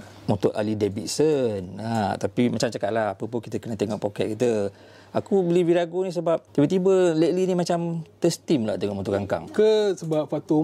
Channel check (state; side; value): identical; both; correlation 1.00